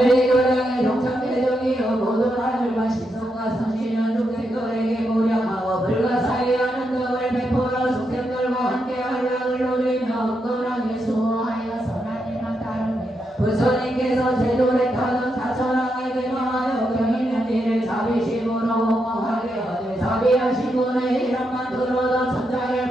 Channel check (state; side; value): normal; both; correlation 0.83